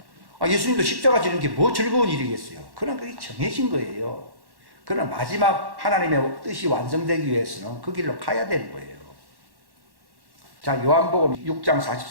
예수님도 십자가 지는 게 뭐 즐거운 일이겠어요. 그러나 그게 정해진 거예요. 그러나 마지막 하나님의 뜻이 완성되기 위해서는 그 길로 가야 되는 거예요. 자, 요한복음 6장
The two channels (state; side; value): late; left; 1.1 ms